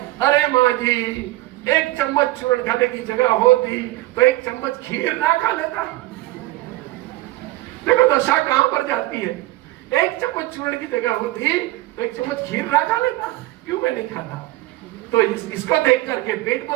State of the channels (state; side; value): quieter; left; 17.9 dB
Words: अरे माँ जी 1 चम्मच चूरन खाने की जगह होती तो 1 चम्मच खीर ना खा लेता। देखो दशा कहां पर जाती है। 1 चम्मच चूरन की जगह होती तो 1 चम्मच खीर ना खा लेता, क्यों मैं नहीं खाता? तो इसको देख करके, पेट